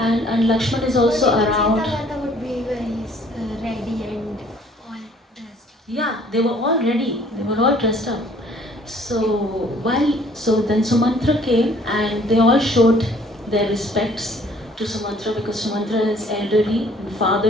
Lakshman is also around. Sita Mata would be very ready and all dressed. Yeah, they were all ready. They were all dressed up. So then Sumantra came and they all showed their respects to Sumantra, because Sumantra is elderly and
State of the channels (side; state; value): both; normal; correlation 0.58